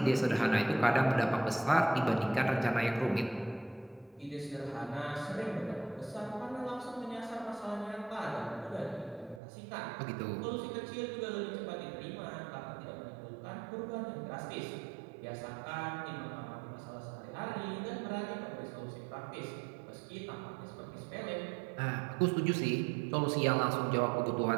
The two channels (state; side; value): drops out; left; at 9.4 s